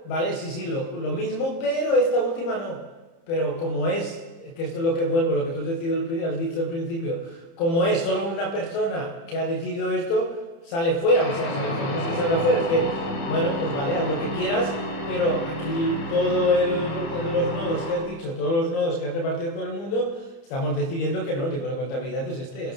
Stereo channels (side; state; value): right; late; 30 ms